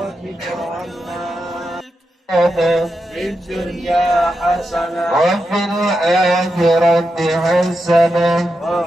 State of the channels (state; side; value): normal; both; correlation 0.87